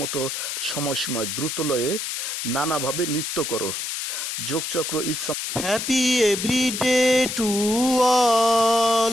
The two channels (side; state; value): left; noise; hiss, 4 dB below the sound